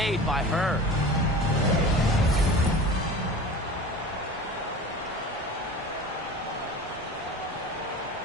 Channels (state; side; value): normal; both; correlation 0.36